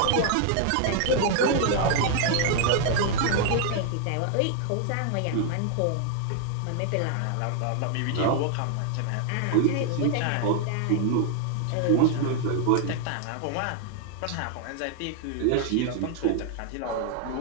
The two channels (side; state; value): both; different; correlation 0.00